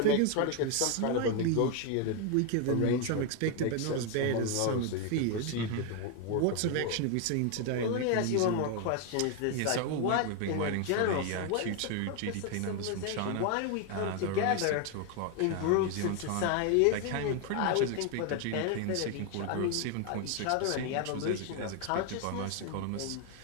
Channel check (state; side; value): different; both; correlation 0.01